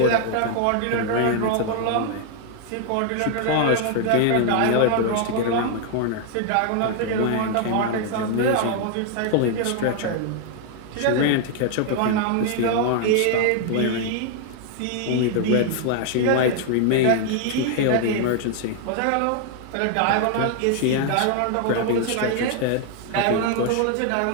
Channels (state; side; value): different; both; correlation 0.00